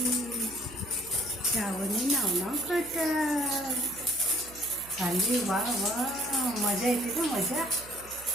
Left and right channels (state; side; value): noise; right; hum, 20 dB below the sound